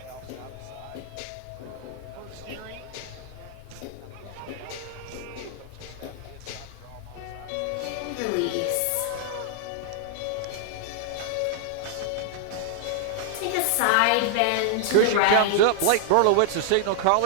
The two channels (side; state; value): both; different; correlation -0.01